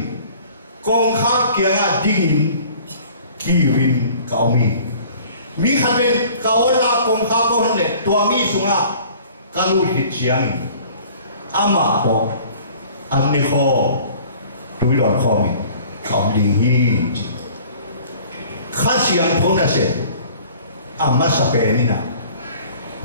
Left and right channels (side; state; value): both; inverted; correlation -0.50